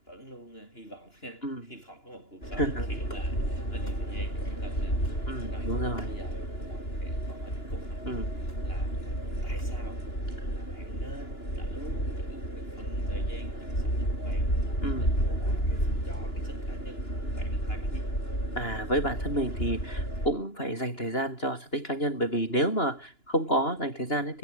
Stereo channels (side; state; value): right; late; 2.9 ms